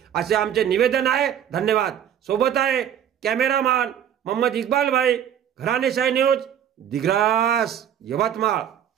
असे आमचे निवेदन आहे. धन्यवाद. सोबत आहे कॅमेरामॅन मोहम्मद इक्बाल भाई, घराणेशाही न्यूज, दिग्रस, यवतमाळ.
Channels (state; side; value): quieter; left; 9.6 dB